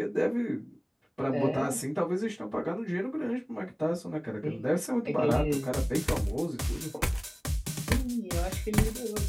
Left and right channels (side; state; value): both; identical; correlation 1.00